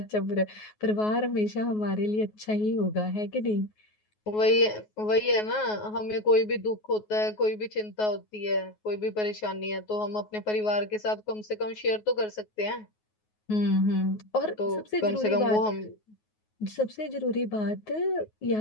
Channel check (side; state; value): right; late; 9.4 ms